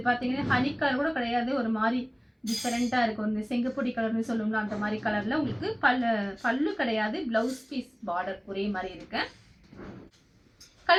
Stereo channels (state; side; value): identical; both; correlation 1.00